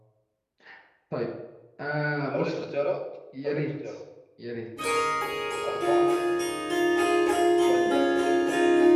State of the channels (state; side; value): identical; both; correlation 1.00